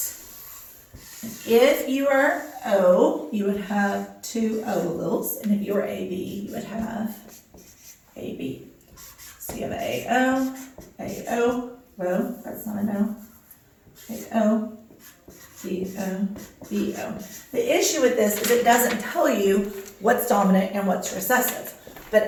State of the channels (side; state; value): both; identical; correlation 1.00